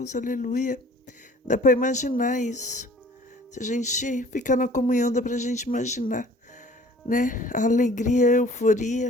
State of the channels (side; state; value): both; normal; correlation 0.51